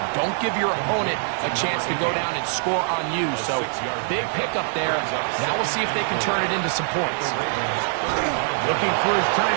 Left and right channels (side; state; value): left; silent; 63 dB below the other